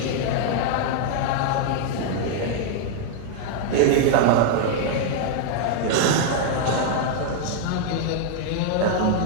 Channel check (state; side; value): different; both; correlation 0.00